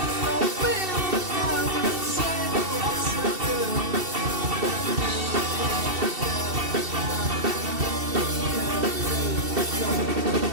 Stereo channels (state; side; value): late; left; 2.7 ms